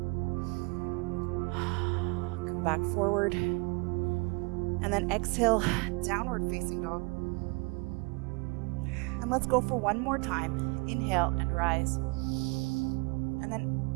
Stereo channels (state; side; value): quieter; left; 29.8 dB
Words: Come back forward, and then exhale, downward facing dog. And let's go for one more time. Inhale and rise. And then